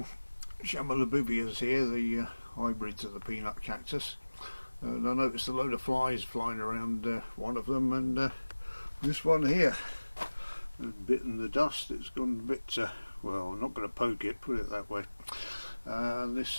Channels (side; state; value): both; inverted; correlation -1.00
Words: Chamalabubias here, the hybrids of the peanut cactus, and I noticed a load of flies flying around one of them, and this one here has bitten the dust. It's gone a bit, well, I'm not going to poke it, put it that way.